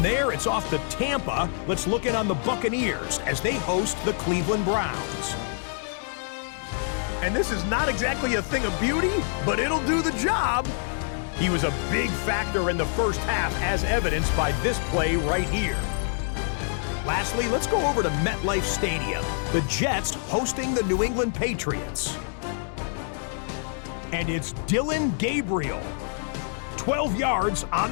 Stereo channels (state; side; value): silent; right; 61 dB below the other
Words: there, it's off to Tampa. Let's look in on the Buccaneers as they host the Cleveland Browns. And this is not exactly a thing of beauty, but it'll do the job. He was a big factor in the first half, as evidenced by this play right here. Lastly, let's go over to MetLife Stadium. The Jets hosting the New England Patriots. And it's Dillon Gabriel. 12 yards